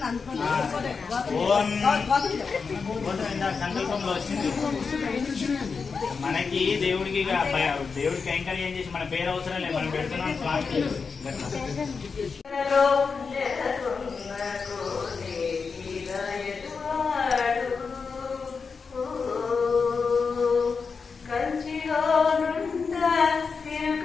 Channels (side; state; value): right; quieter; 5.2 dB